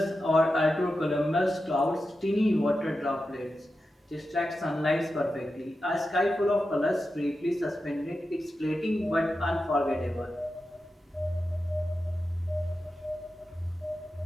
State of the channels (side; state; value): both; normal; correlation 0.91